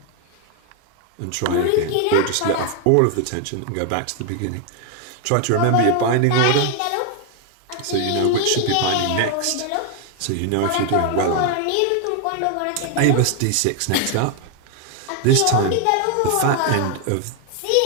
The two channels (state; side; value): different; both; correlation 0.00